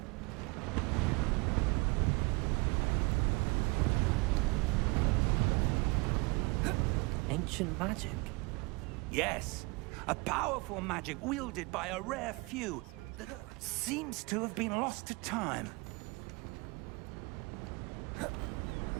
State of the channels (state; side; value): quieter; left; 28.3 dB